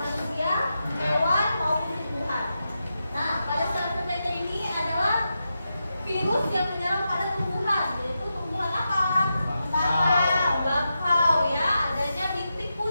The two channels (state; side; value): inverted; both; correlation -0.88